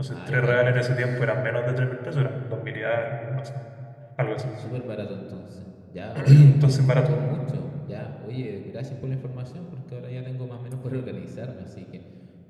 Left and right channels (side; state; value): both; identical; correlation 1.00